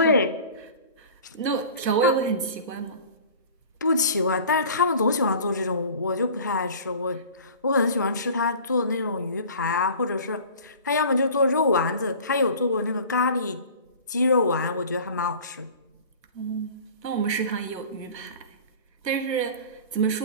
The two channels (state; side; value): inverted; both; correlation -0.42